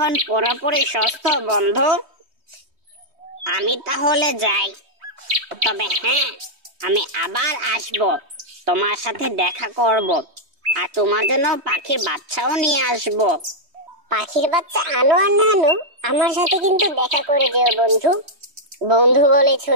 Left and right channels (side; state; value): left; late; 3.2 ms